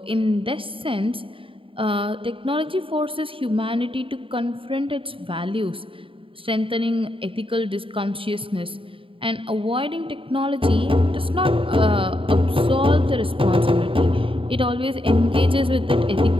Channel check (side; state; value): left; late; 0.26 ms